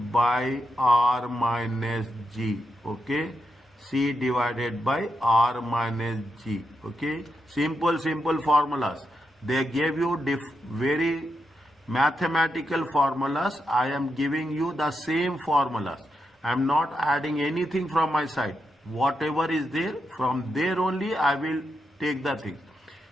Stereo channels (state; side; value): normal; both; correlation 0.84